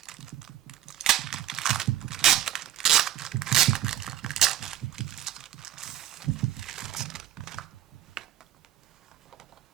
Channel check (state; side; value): quieter; left; 12.6 dB